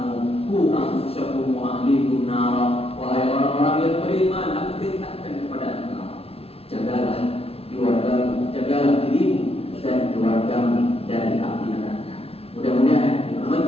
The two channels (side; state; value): right; late; 0.29 ms